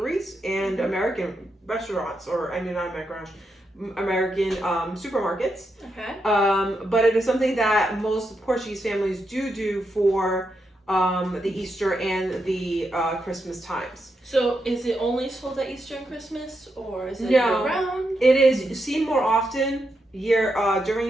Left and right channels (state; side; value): normal; both; correlation 0.84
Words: and American restaurants, not American restaurants, American supermarkets. Okay. But it is something that most Portuguese families do for the Easter and the Christmas times. So is it only sold at Easter and Christmas, or is it year-round? It is seen more often